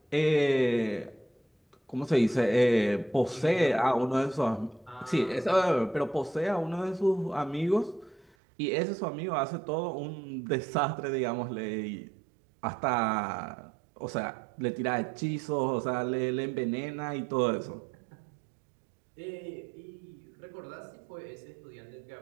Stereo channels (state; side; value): drops out; left; at 8.3 s